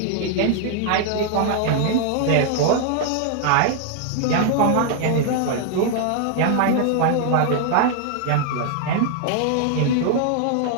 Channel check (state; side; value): different; both; correlation 0.00